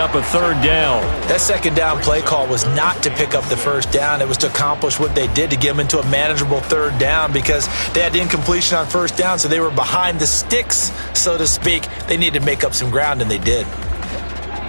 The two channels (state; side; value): inverted; both; correlation -1.00